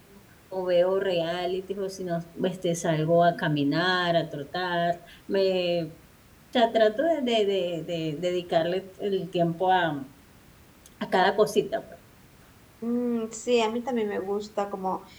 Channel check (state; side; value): identical; both; correlation 1.00